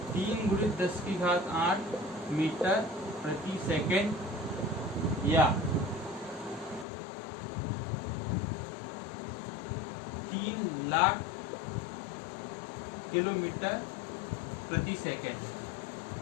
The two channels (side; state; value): right; drops out; at 6.9 s